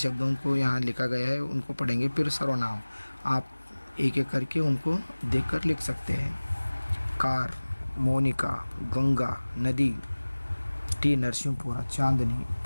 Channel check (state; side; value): inverted; both; correlation -1.00